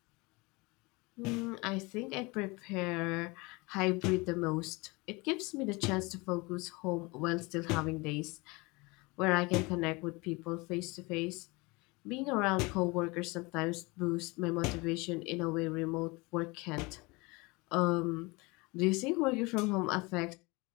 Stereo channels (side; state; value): right; quieter; 25.5 dB